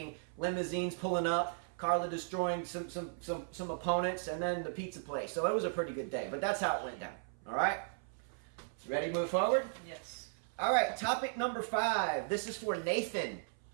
limousines pulling up, Carla destroying some opponents, and then the pizza place. So it was a pretty good day, but that's how it went down. All right? Ready to move forward? Yes. All right, topic number 5. This is for Nathan.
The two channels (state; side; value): silent; left; 54 dB below the other